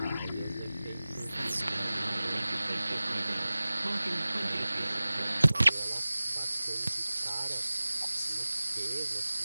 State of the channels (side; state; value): both; inverted; correlation -0.98